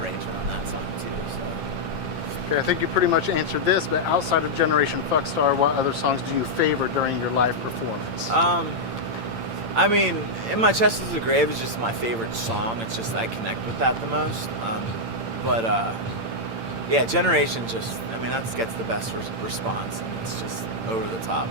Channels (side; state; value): left; late; 8.8 ms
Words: on that song too. So. Okay, I think you pretty much answered this, but outside of Generation Fuckstar, what other songs do you favor during your live performance? I mean, In My Chest Is a Grave is just my favorite song. It's just I connect with that the most. Yeah, Generation just, I mean, that gets the best response, and it's just over the top,